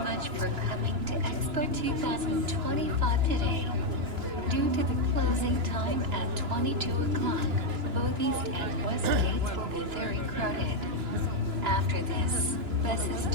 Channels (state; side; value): late; left; 2.9 ms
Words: for coming to Expo 2025 today.Due to the closing time at 22 o'clock, both east and west gates will be very crowded. After this, buses